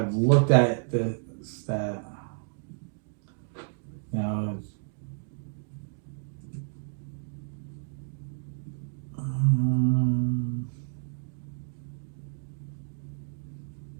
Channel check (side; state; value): left; silent; digital silence